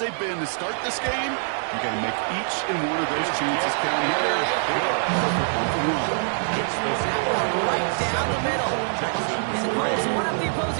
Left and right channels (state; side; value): silent; left; digital silence